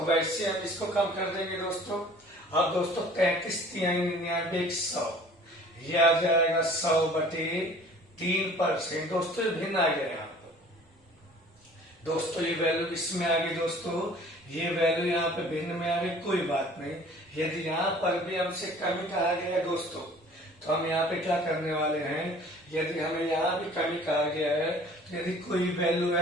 वैसे हम इसको कम कर देंगे दोस्तों। अब दोस्तों 33×99=100, ये आ जाएगा 100/3%। दोस्तों ये भिन्न आ गया यहाँ पर दोस्तों, ये वैल्यू इसमें आ गई दोस्तों, ये वैल्यू यहाँ पे भिन्न में आ गई, कोई बात नहीं। यदि यहाँ पर भी हमसे कमी कहा गया है दोस्तों, तो हम यहाँ पे क्या करने वाले हैं, यदि हमें यहाँ भी कमी कहा गया है, तो यदि कोई वैल्यू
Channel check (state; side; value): normal; both; correlation 0.50